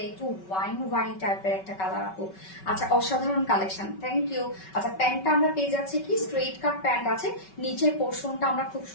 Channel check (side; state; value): right; late; 5.3 ms